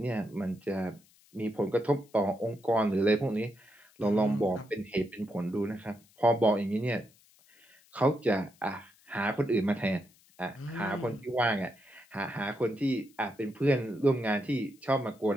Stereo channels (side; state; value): left; noise; hiss, 29 dB below the sound